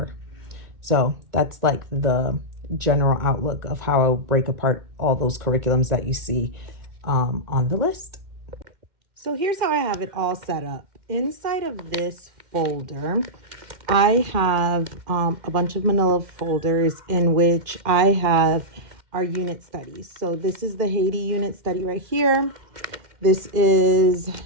So that's like the general outlook of how I'll break apart all those curriculums that you see on the list. So here's how I have it all set up. Inside of this folder, I have a bunch of manila folders in which I have our unit studies. So this is the Haiti unit study right here. This is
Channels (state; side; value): late; left; 2.4 ms